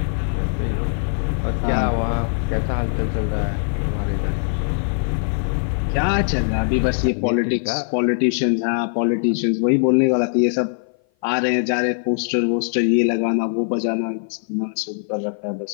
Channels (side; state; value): right; silent; 56 dB below the other